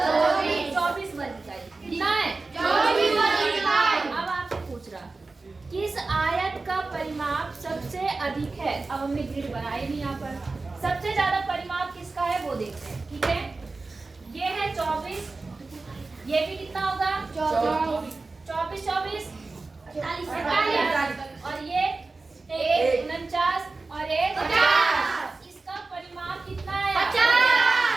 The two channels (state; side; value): quieter; left; 3.7 dB